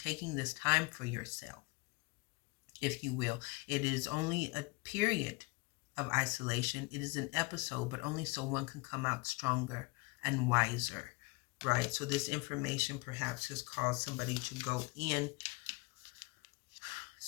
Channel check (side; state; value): right; quieter; 26.6 dB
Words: this time for yourself, if you will, it is only a period of isolation. It is an episode, but only so one can come out stronger, and wiser, right? So this information perhaps has caused somebody to go in.